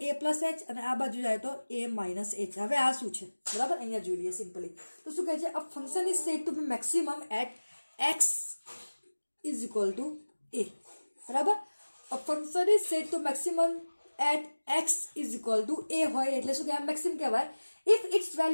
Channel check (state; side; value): inverted; both; correlation -1.00